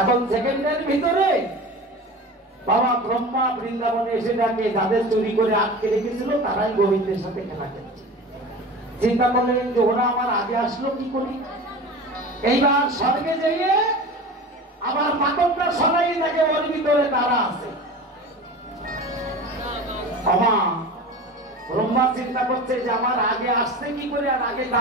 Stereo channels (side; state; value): both; normal; correlation 0.34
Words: সেকেন্ডের ভিতরে বাবা ব্রহ্মা বৃন্দাবনে এসে ডাকে, যাদের চুরি করে আটকে রেখেছিল তারাই গোবিন্দের সাথে খেলা খেলছে। চিন্তা করলেন যে ওরা আমার আগে আসলো কি করি। এইবার স্বর্গে যেয়ে আবার পাথরটা সরাই থাকে, ওর ভিতরে তারা আছে। ব্রহ্মা চিন্তা করছে যে আমার আগে আসতে কি করে আর আগে